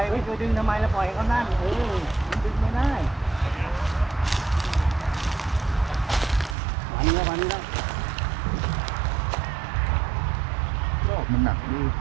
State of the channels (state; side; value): drops out; left; at 6.6 s